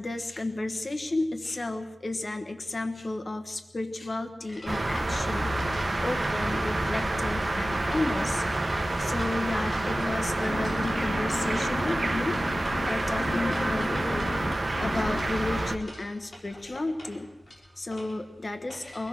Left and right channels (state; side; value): normal; both; correlation 0.95